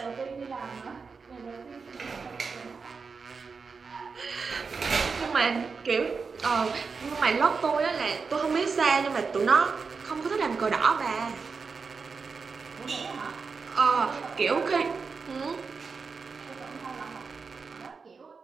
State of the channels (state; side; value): quieter; left; 5.0 dB